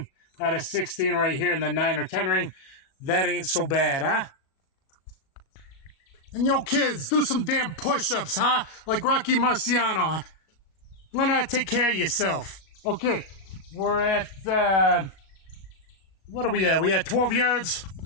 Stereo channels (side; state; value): right; late; 38 ms